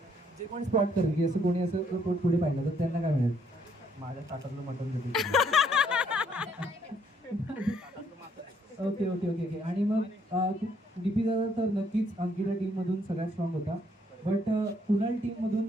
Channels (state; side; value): normal; both; correlation 0.68